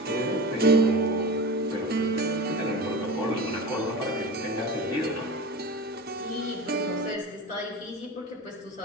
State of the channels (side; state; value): both; normal; correlation 0.30